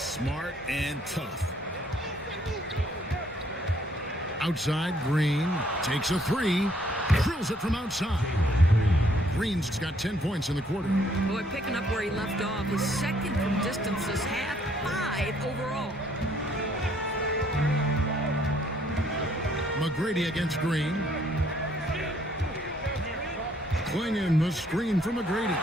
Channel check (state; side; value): normal; both; correlation 0.66